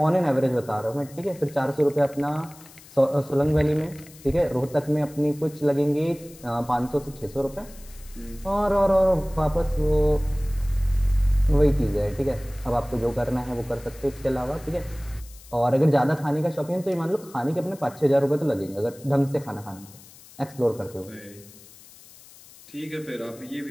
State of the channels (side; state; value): left; noise; hiss, 22 dB below the sound